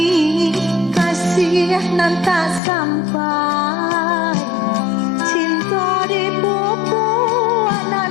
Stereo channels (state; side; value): drops out; right; at 2.6 s